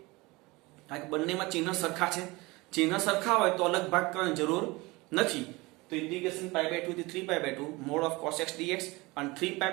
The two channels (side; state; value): left; quieter; 23.0 dB